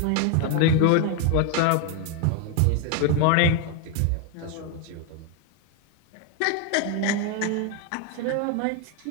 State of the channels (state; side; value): different; both; correlation 0.01